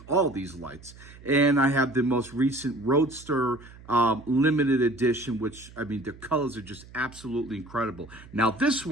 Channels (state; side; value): noise; right; hum, 20 dB below the sound